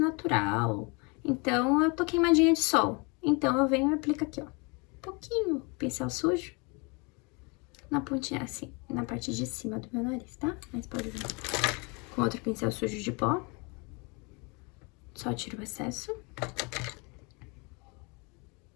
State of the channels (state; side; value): quieter; right; 30.5 dB